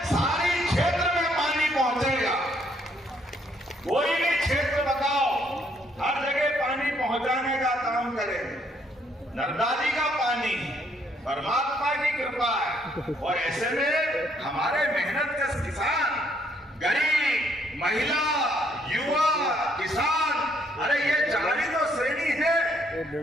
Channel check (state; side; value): normal; both; correlation 0.69